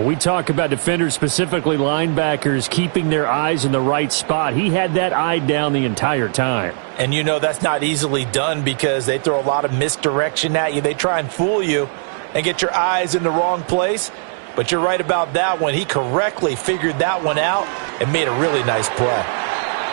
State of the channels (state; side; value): silent; left; digital silence